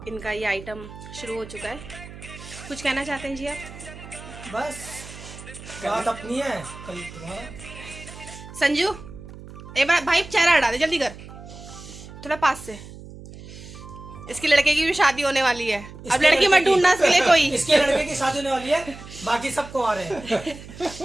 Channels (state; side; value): noise; right; hum, 15 dB below the sound